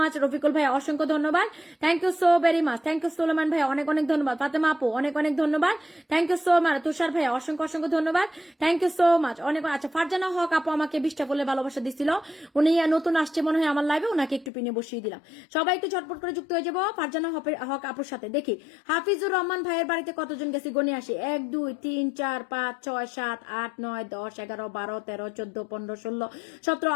Rafiqul ভাই অসংখ্য ধন্যবাদ, thank you so very much, thank you Suleman ভাই অনেক অনেক ধন্যবাদ। ফাতেমা আপু অনেক অনেক ধন্যবাদ, thank you so much. Tushar ভাই অসংখ্য ধন্যবাদ, থ্যাংক ইউ সো মাচ, অনেক। আচ্ছা, ফারজানা হক আপু আমাকে 20টা বলে ভালোবাসা দিছিল, উনি নতুন আসছে মনে হয় আমার লাইভে, ওনাকে একটু পিনে বসিয়ে দিলাম। সবাই একটু ঝটপট করে যুক্ত হয়ে যাবো ফারজানা হক আপুর সাথে। দেখি হাফিজুর রহমান ভাইয়ের বাড়িতে কতজন গেছে গনে আসি। 1 2 3 4 5 6 7 8 9 10 11 12 13 14 15 16 17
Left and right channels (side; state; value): right; drops out; at 14.5 s